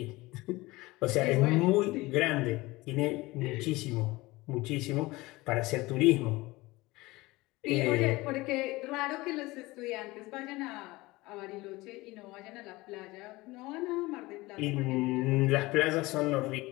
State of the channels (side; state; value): right; quieter; 20.9 dB